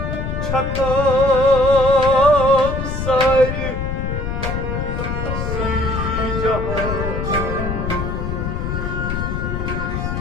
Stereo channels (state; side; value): noise; left; rumble, 3 dB below the sound